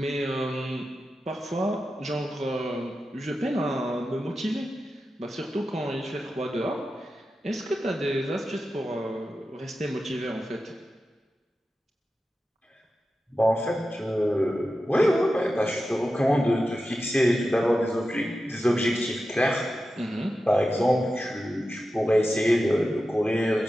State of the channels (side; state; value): both; normal; correlation 0.92